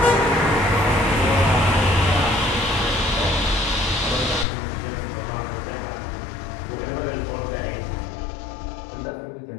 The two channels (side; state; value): right; drops out; at 4.5 s